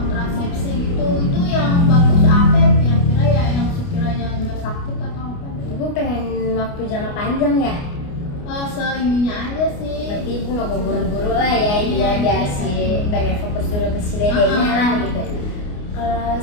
gitu. Itu yang bagus apa ya kira-kira ya, yang sekiranya nggak sakit atau apa gitu. Ibu pengen waktu jangka panjang ya? Seininya aja sih. Berarti Ibu nggak mau buru-buru lah ya, ini ya biar si pengen fokus dulu ke si dedenya lah gitu. Kalau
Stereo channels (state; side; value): late; right; 29 ms